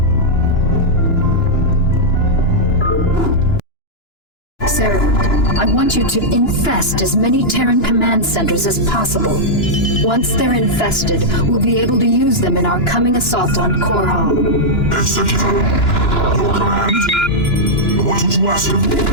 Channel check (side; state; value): right; late; 2.9 ms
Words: Cerebrate, I want you to infest as many Terran command centers as possible. Once they're infested, we'll be able to use them in our coming assault on Korhal. Executor, your command? What would you ask of me?